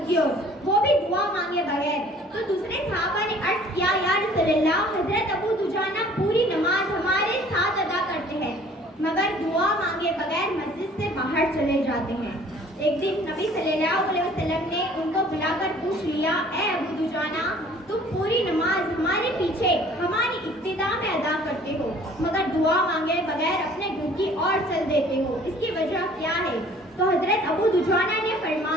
کی اور، وہ بھی دعا مانگے بغیر۔ تو دوسرے صحابہ نے عرض کیا، یا رسول اللہ، حضرت ابو دجانہ پوری نماز ہمارے ساتھ ادا کرتے ہیں مگر دعا مانگے بغیر مسجد سے باہر چلے جاتے ہیں۔ ایک دن نبی صلی اللہ علیہ وسلم نے ان کو بلا کر پوچھ لیا، اے ابو دجانہ، تم پوری نماز ہمارے پیچھے ہماری ابتدا میں ادا کرتے ہو مگر دعا مانگے بغیر اپنے گھر کی اور چل دیتے ہو، اس کی وجہ کیا ہے؟ تو حضرت ابو دجانہ نے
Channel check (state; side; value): normal; both; correlation 0.53